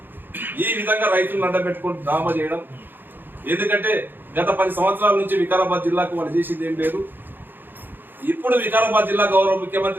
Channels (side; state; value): left; late; 0.095 ms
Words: ఈ విధంగా రైతులను అడ్డపెట్టుకొని డ్రామా చేయడం. ఎందుకంటే గత 10 సంవత్సరాల నుంచి వికారాబాద్ జిల్లాకు వాళ్ళు చేసింది ఏం లేదు. ఇప్పుడు వికారాబాద్ జిల్లా గౌరవ